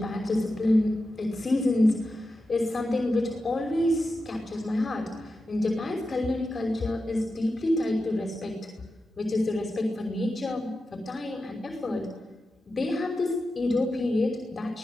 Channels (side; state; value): both; normal; correlation 0.91